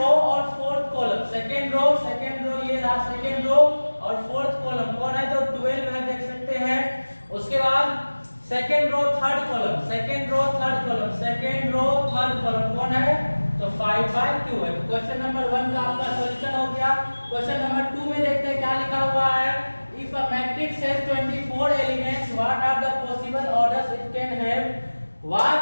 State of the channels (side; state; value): both; inverted; correlation -1.00